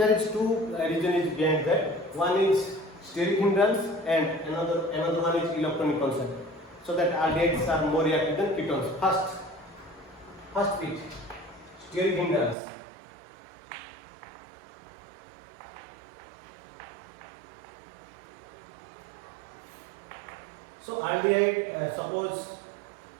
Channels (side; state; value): left; drops out; at 12.6 s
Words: is two reasons behind that. One is steric hindrance and another one is electronic concept. So that aldehydes are more reactive than ketones. First bit, steric hindrance. So aldehyde, suppose